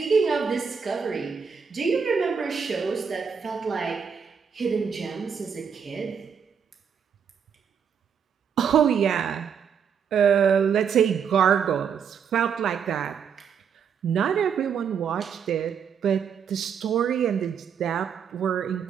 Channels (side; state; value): left; quieter; 7.0 dB